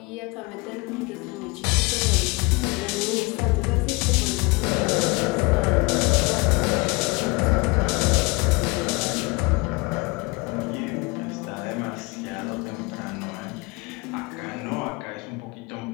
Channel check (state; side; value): quieter; right; 25.8 dB